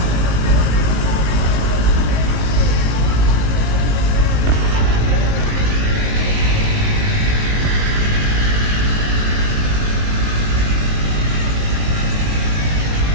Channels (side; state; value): left; late; 19 ms